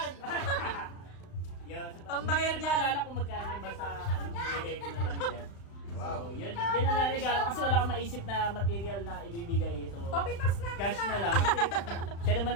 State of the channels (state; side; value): late; right; 35 ms